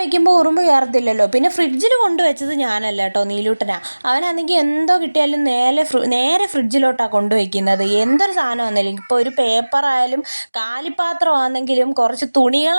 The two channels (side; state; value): both; inverted; correlation -1.00